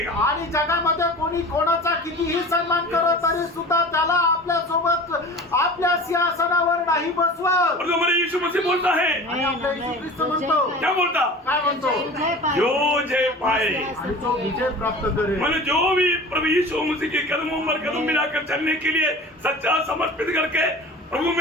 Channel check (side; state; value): both; normal; correlation 0.38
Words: आणि जगामध्ये कोणी कोणाचा कितीही सन्मान करत तरी सुद्धा त्याला आपल्या सोबत आपल्या सिंहासनावर नाही बसवत। और हमारे यीशु मसीह बोलता है, आणि आपल्या येशू ख्रिस्त म्हणतो क्या बोलता, काय म्हणतो जो जय पाए आणि तो विजय प्राप्त करेल। मैंने जो भी प्रभु यीशु मसीह के कदमों पर कदम मिलाकर चलने के लिए सच्चा समर्पित करके प्रभु